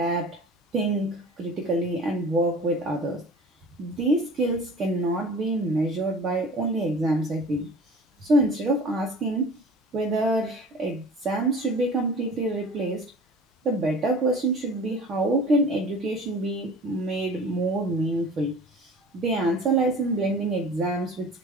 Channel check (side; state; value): both; normal; correlation 0.42